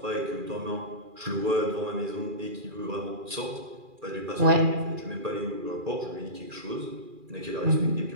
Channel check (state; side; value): late; left; 2.4 ms